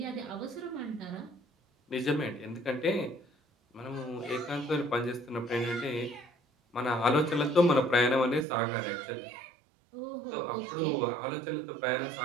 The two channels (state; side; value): drops out; left; at 8.5 s